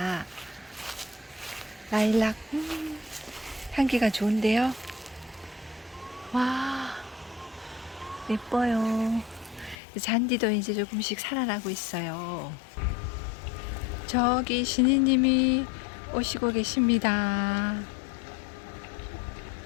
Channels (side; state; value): right; drops out; at 9.8 s